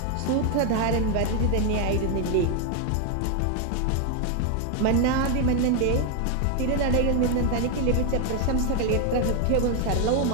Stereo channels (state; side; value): different; both; correlation 0.01